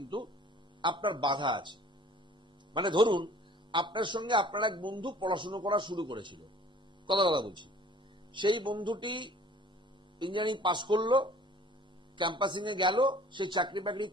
আপনার বাধা আছে। মানে ধরুন, আপনার সঙ্গে আপনার এক বন্ধু পড়াশোনা করা শুরু করেছিল, কথা বলছি, সেই বন্ধুটি ইঞ্জিনিয়ারিং পাস করলো, ক্যাম্পাসিং এ গেল, সে চাকরি বাকরি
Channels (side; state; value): both; normal; correlation 0.50